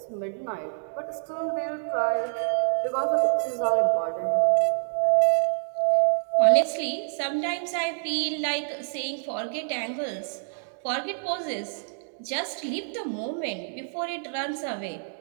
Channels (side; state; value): left; silent; digital silence